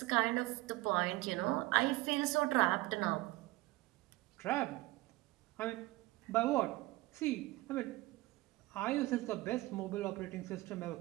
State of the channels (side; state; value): left; quieter; 19.7 dB